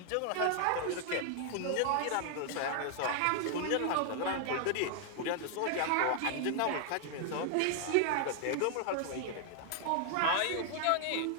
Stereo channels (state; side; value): different; both; correlation 0.00